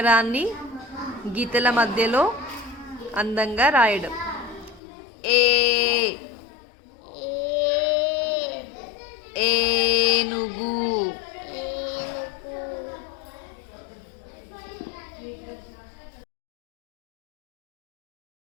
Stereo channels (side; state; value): right; drops out; at 4.8 s